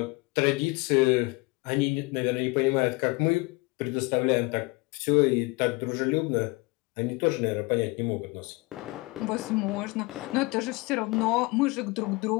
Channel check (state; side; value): quieter; right; 25.2 dB